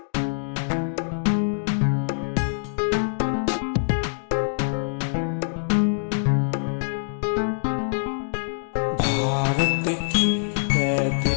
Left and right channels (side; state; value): right; silent; digital silence